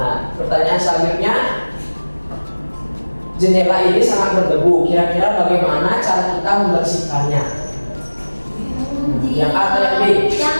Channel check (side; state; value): both; inverted; correlation -1.00